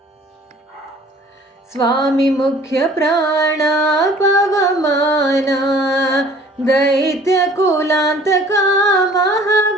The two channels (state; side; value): normal; both; correlation 0.51